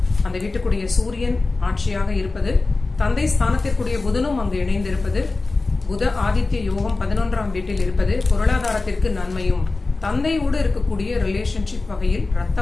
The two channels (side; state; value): right; quieter; 3.5 dB